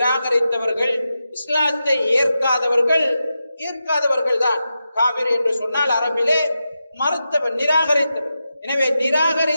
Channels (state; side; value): inverted; both; correlation -0.89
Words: இஸ்லாத்தை ஏற்காதவர்கள் தான் காபிர் என்று சொன்னால் அரபிலே மறுத்தவர், நிராகரித்தவர். எனவே